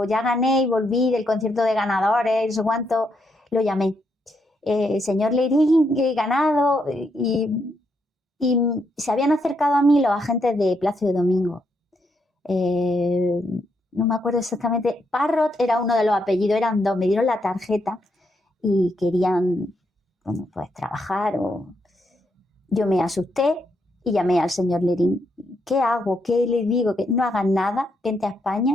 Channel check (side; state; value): both; normal; correlation 0.78